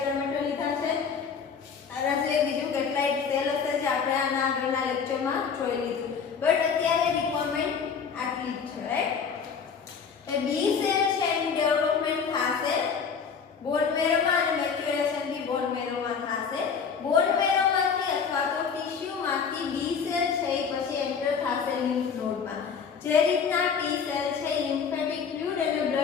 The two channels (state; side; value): quieter; right; 6.3 dB